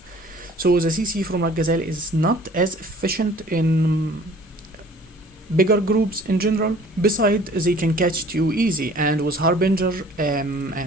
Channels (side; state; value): both; normal; correlation 0.51